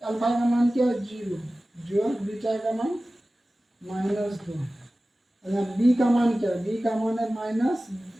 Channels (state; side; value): normal; both; correlation 0.96